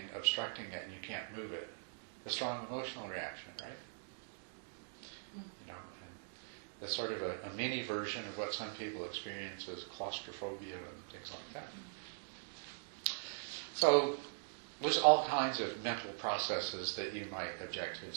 obstructing it and you can't move it? A strong emotional reaction, right? You know, and that's sort of a mini version of what some people experience as claustrophobia and things like that. So there's all kinds of mental processes that you might object to and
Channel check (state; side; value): silent; left; digital silence